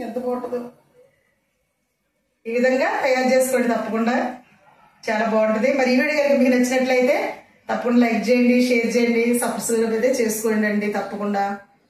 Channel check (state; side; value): identical; both; correlation 1.00